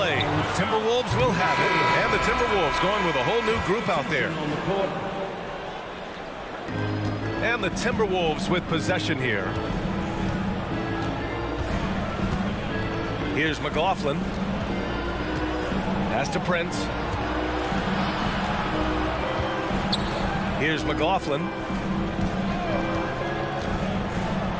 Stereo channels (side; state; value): both; identical; correlation 1.00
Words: Timberwolves will have it. And the Timberwolves going with a whole new group out there. And the Timberwolves with possession here. Here's McLaughlin. Pass to Prince. Here's McLaughlin.